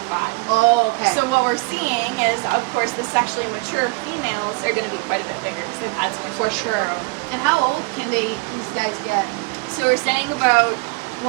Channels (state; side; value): quieter; left; 26.7 dB